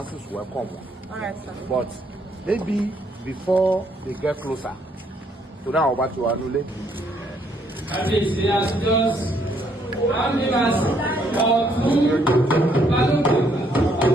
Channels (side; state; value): both; normal; correlation 0.69